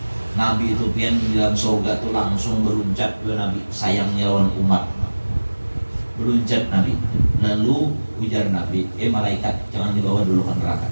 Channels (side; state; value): both; inverted; correlation -1.00